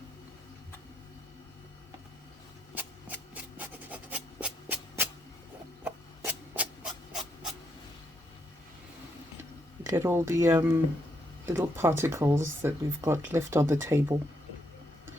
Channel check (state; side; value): normal; both; correlation 0.78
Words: Look at all the little particles that we've got left on the table.